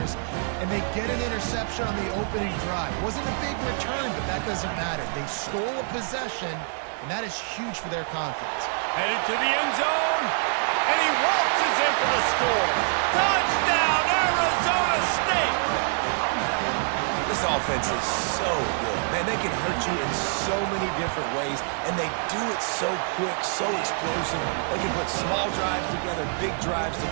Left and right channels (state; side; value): silent; left; 60 dB below the other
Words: and they get an interception on the opening drive. It wasn't a big return, but that doesn't matter. They stole a possession, and that is huge for their confidence. Headed to the end zone. And he waltzes in for the score. Touchdown, Arizona State! This offense is so good. Man, they can hurt you in so many different ways, and they do it so quick, so explosive. They can put small drives together, big drives